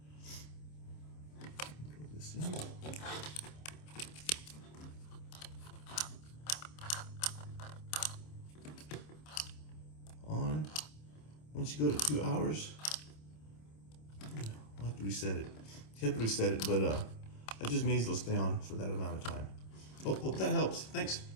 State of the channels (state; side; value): late; right; 26 ms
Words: Plug this in. On. Once you go to 2 hours, I'll have to reset it. You have to reset it, but that just means it'll stay on for that amount of time. Hope that helps. Thanks.